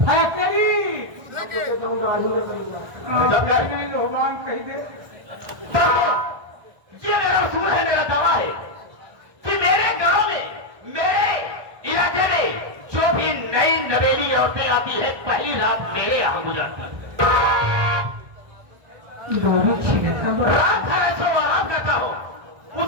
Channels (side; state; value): left; late; 1.5 ms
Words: नहीं भगवान कही दे। ये मेरा उसूल है, मेरा दावा है कि मेरे गांव में, मेरे इलाके में जो भी नई नवेली औरतें आती है, पहली रात मेरे यहाँ गुजरती है। रात भर ऐसे आराम करता हूँ,